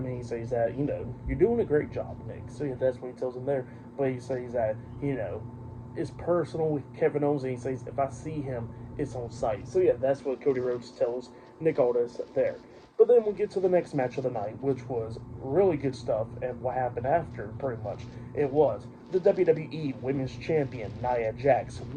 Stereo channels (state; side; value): identical; both; correlation 1.00